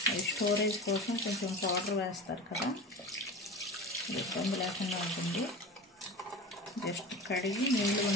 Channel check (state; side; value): normal; both; correlation 0.32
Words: అవి స్టోరేజ్ కోసం కొంచెం పౌడర్ వేస్తారు కదా, ఇబ్బంది లేకుండా ఉంటుంది. జస్ట్ కడిగి నీళ్ళు